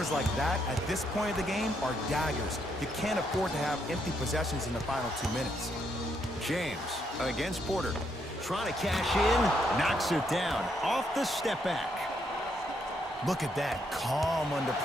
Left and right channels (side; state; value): both; normal; correlation 0.76